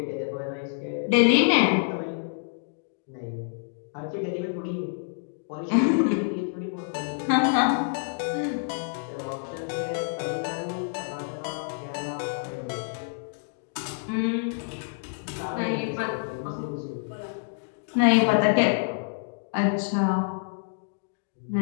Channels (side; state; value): right; silent; digital silence